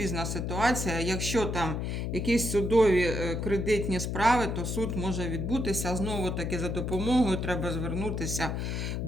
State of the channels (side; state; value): left; noise; hum, 2 dB below the sound